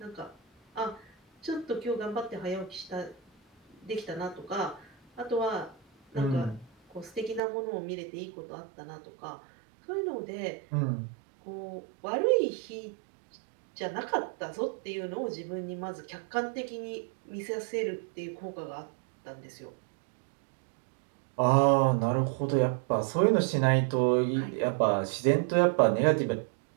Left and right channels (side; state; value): left; drops out; at 7.4 s